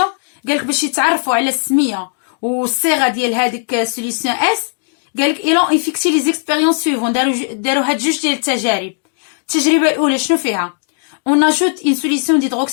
قال لك باش يتعرفوا على السميه والصيغه ديال هذيك السوليسيون اس. قال لك ils ont effectué les expériences suivantes. داروا هاد جوج ديال التجارب. التجربه الاولى شنو فيها؟ on ajoute une solution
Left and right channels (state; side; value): silent; right; 69 dB below the other